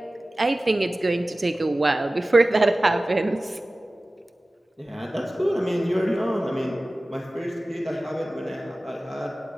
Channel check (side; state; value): both; normal; correlation 0.97